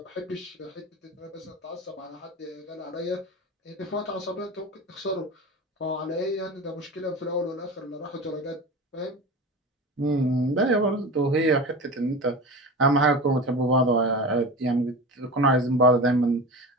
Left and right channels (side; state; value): both; normal; correlation 0.30